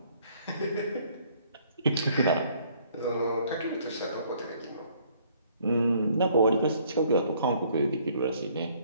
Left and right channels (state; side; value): inverted; both; correlation -0.62